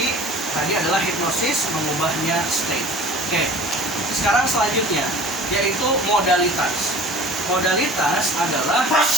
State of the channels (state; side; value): normal; both; correlation 0.44